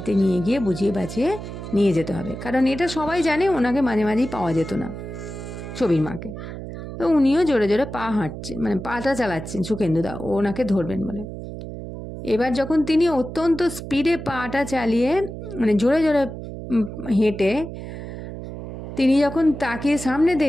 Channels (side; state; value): right; noise; hum, 9 dB below the sound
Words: নিয়ে গিয়ে বুঝিয়ে বাঁচিয়ে নিয়ে যেতে হবে, কারণ এটা সবাই জানে ওনাকে মাঝে মাঝেই পাওয়া যেত না, ছবির মাকে। তো উনিও জোরে জোরে পা হাঁটছেন, মানে পাটা চালাচ্ছেন সুখেন্দুদা ওনাকে ধরবেন বলে। এবার যখন তিনি অত্যন্ত স্পিডে পাটা চালিয়ে, মানে জোরে জোরে হেঁটে তিনি যখন তাকিয়ে সামনে